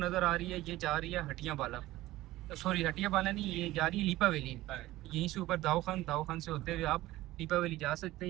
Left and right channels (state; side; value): quieter; left; 16.8 dB